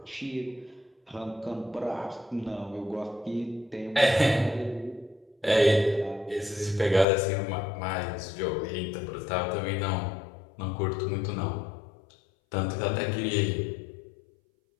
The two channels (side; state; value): right; drops out; at 7.1 s